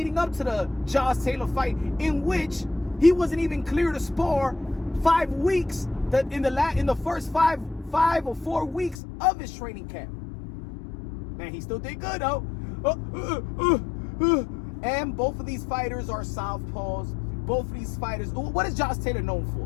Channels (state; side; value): drops out; right; at 9.0 s